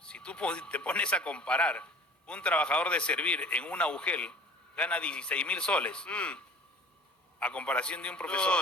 si tú te pones a comparar un trabajador de servir en una UGEL gana 16.000 soles a comparación de un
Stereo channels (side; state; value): both; normal; correlation 0.46